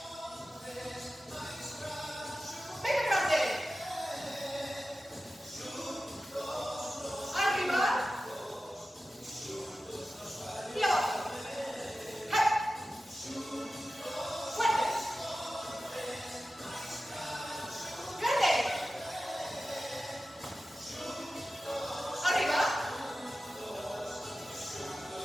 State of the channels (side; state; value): both; normal; correlation 0.94